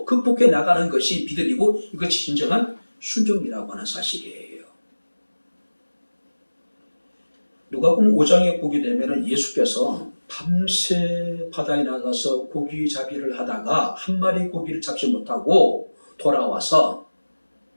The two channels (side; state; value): both; inverted; correlation -1.00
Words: 극복해 나가는 것이 믿음이고 이것이 진정한 순종이라고 하는 사실이에요. 누가복음 5장에 보게 되면 예수께서 밤새 바다에 나가서 고기 잡이를 하다가 한 마리 고기를 잡지 못하고 돌아와서